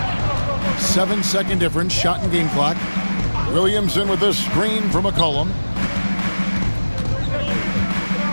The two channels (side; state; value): both; inverted; correlation -1.00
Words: 7-second difference, shot and game clock. Williamson with this screen from McCollum.